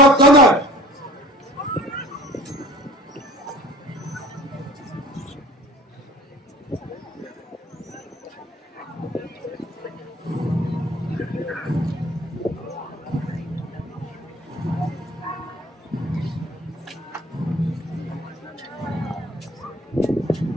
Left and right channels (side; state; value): both; normal; correlation 0.47